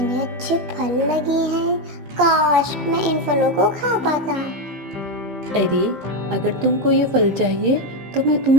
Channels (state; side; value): late; left; 15 ms